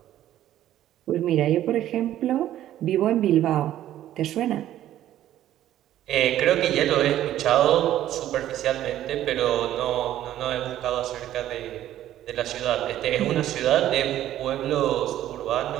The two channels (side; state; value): left; quieter; 12.6 dB